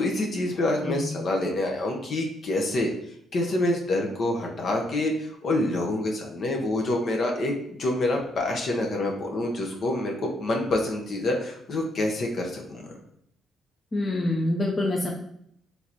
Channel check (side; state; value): both; normal; correlation 0.74